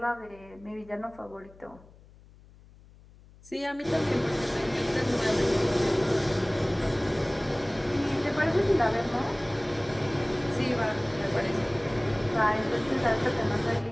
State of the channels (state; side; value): noise; left; hum, 24 dB below the sound